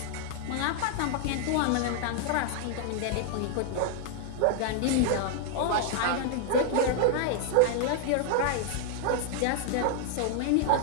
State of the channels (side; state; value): both; different; correlation 0.00